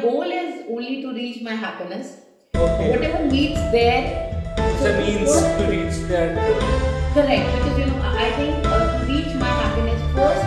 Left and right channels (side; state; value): both; identical; correlation 1.00